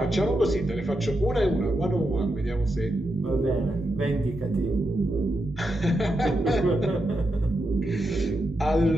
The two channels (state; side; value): normal; both; correlation 0.85